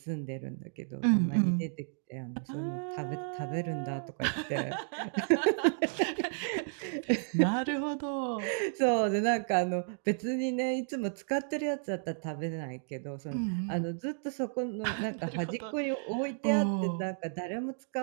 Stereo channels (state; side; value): silent; left; digital silence